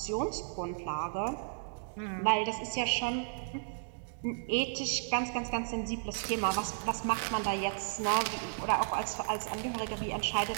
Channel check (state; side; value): silent; left; digital silence